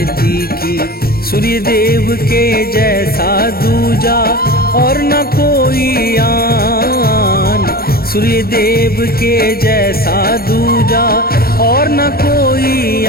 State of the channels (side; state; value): right; late; 0.44 ms